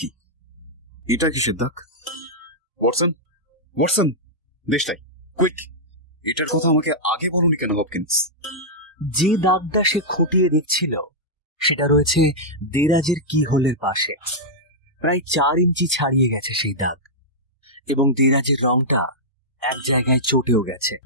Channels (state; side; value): normal; both; correlation -0.09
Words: এটা কিসের দাগ? ওয়াটসন, ওয়াটসন, দেশটাই কুইক, এটার কথা আমাকে আগে বলুনি কেন হপকিন্স? যে দাগটা সে খুঁটিয়ে দেখছিল সেটা রয়েছে দেরাজের কি হোলের পাশে। প্রায় 4 ইঞ্চি ছাড়িয়ে গেছে সেই দাগ, এবং দেরাজের রংটা এক জায়গায় চটেও গেছে।